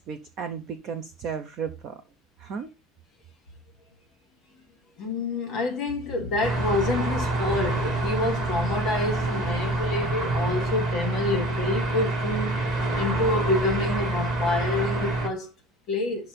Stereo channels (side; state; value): both; normal; correlation 0.40